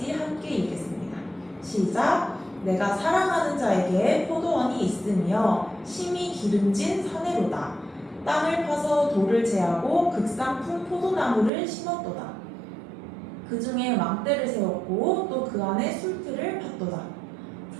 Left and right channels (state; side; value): drops out; left; at 11.5 s